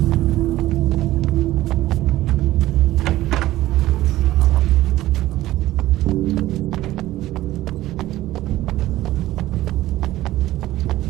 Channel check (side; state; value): left; quieter; 15.7 dB